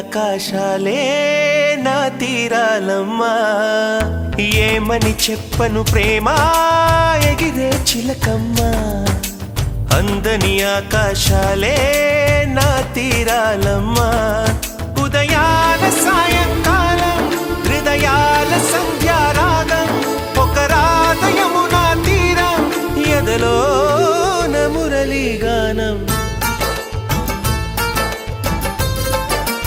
నా తీరాలమ్మా. ఏమని చెప్పను ప్రేమ ఎగిరే చిలకమ్మ, అందని ఆకాశాలే నా తీరాలమ్మా. ఉదయాల సాయంకాలం హృదయాల సంధ్యారాగం, ఒక రాధయము నా తీరం ఎదలో మురళీ గానం.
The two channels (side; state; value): both; identical; correlation 1.00